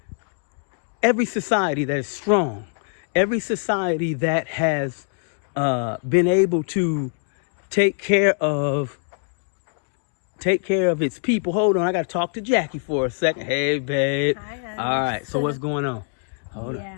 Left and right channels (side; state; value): right; silent; 56 dB below the other